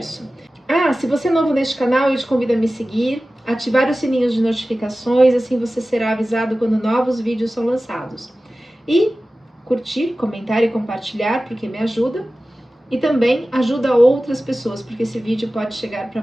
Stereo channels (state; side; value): normal; both; correlation 0.96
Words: Se você é novo neste canal, eu te convido a me seguir, ativar os sininhos de notificações, assim você será avisado quando novos vídeos são lançados. E curtir, comentar e compartilhar, porque me ajuda. E também ajuda outras pessoas, porque esse vídeo pode chegar para